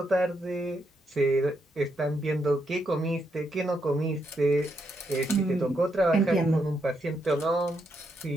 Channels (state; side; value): normal; both; correlation 0.79